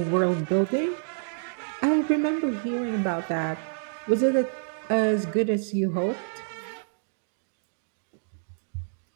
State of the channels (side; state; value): left; silent; digital silence